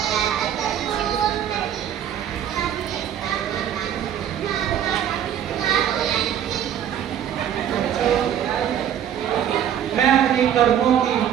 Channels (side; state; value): left; quieter; 9.8 dB